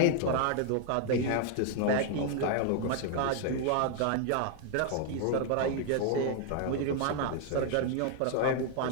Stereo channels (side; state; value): both; different; correlation 0.00